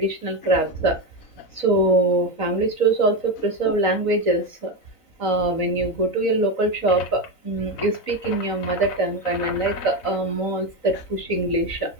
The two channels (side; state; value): right; late; 4.0 ms